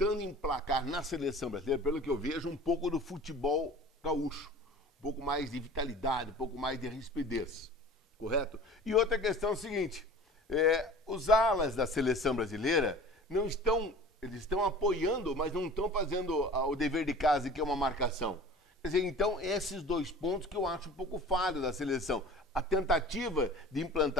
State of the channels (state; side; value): normal; both; correlation 0.42